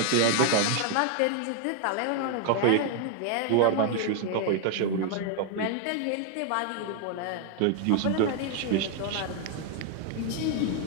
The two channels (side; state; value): both; different; correlation 0.00